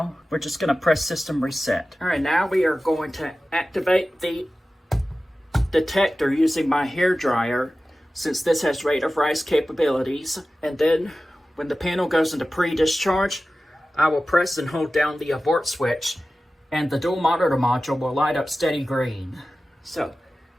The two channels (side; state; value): both; normal; correlation 0.95